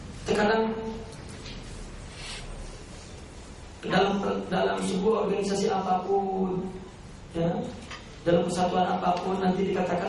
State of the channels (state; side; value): identical; both; correlation 1.00